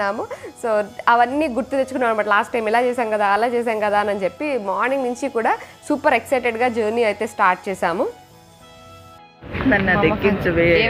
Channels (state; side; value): identical; both; correlation 1.00